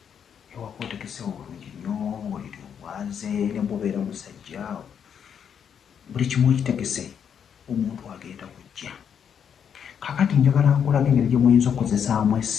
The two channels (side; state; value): right; quieter; 7.9 dB